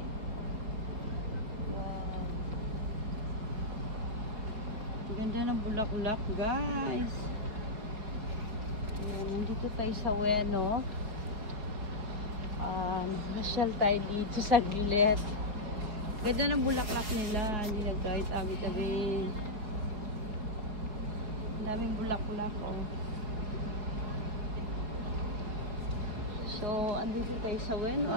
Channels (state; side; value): late; left; 4.7 ms